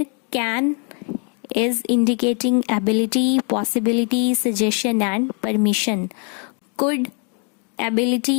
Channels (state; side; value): quieter; right; 37.9 dB